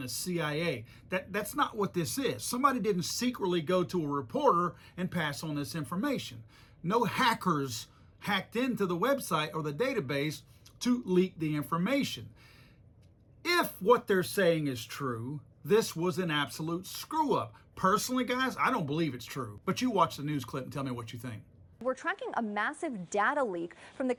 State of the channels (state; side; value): identical; both; correlation 1.00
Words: CIA. That's not what this is. Somebody didn't secretly go to a reporter and pass on this information. No hackers hacked into the website or the database to leak the information. If what they're saying is true, this was an absolute screw up. Personally, guys, I don't believe it's true. But you watch the news clip and tell me what you think. We're tracking a massive data leak from the